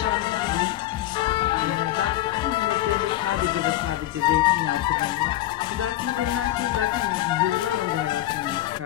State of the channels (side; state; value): right; quieter; 14.5 dB